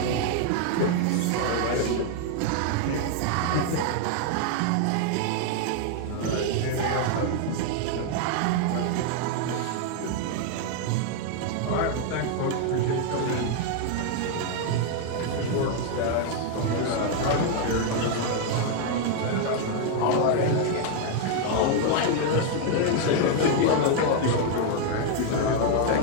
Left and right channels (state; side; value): different; both; correlation 0.01